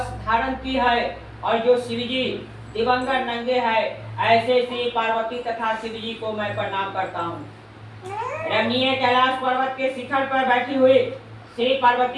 धारण की है और जो शिव जी दिवंगत नंगे है, ऐसे श्री पार्वती तथा शिव जी को मैं प्रणाम करता हूँ। रमणीय कैलाश पर्वत के शिखर पर बैठी हुई श्री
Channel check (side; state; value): both; identical; correlation 1.00